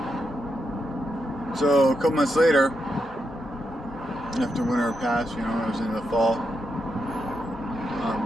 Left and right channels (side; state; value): both; normal; correlation 0.84